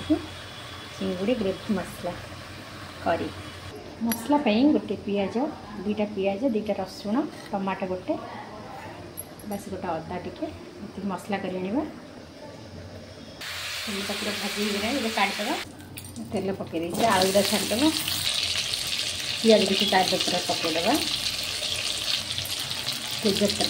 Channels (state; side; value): identical; both; correlation 1.00